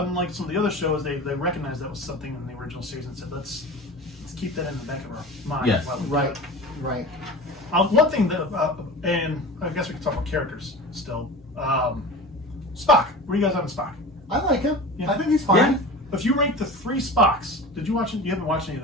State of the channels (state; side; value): normal; both; correlation 0.34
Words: some of the other shows, they recognized that was something in the original series and said, let's keep that in the back of our mind. Yes. while we do Right. it. Right. One thing that, and I guess we can talk about characters still. Spock. Where are you guys on Spock? I like him. Yeah. I think he's fine. Yeah. If you rank the three Spocks, did you watch it? You haven't watched any of